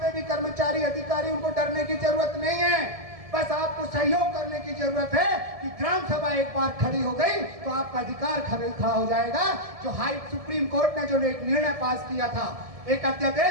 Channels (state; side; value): late; left; 1.7 ms